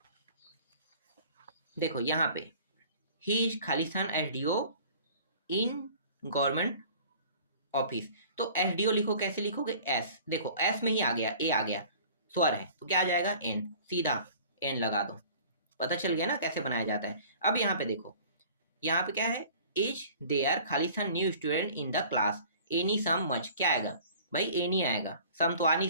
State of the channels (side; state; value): both; inverted; correlation -0.48